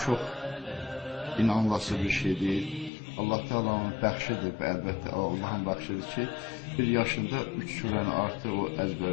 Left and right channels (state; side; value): drops out; right; at 2.9 s